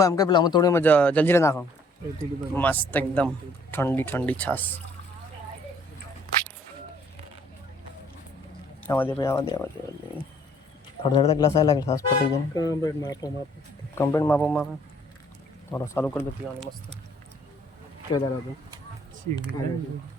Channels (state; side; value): normal; both; correlation 0.61